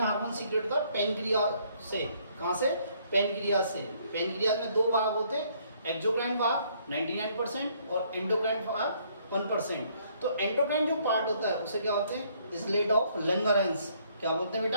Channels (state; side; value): inverted; both; correlation -0.66